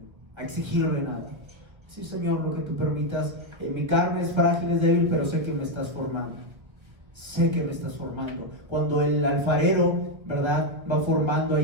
a exigirle nada. Sí, Señor, lo que tú permitas, mi carne es frágil, es débil, pero sé que me estás formando. Sé que me estás formando. Cuando el alfarero, ¿verdad?, va formando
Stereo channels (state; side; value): late; left; 1.6 ms